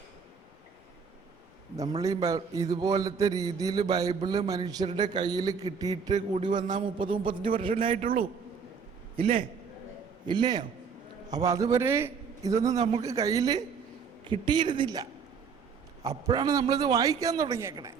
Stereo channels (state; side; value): quieter; left; 6.1 dB